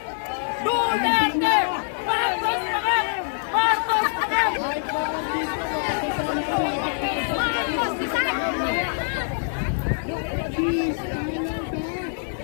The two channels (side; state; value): right; silent; digital silence